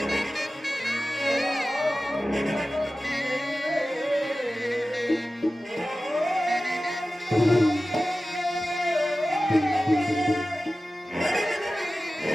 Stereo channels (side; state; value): both; normal; correlation 0.95